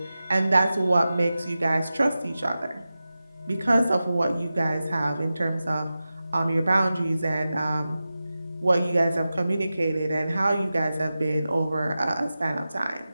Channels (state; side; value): inverted; both; correlation -0.94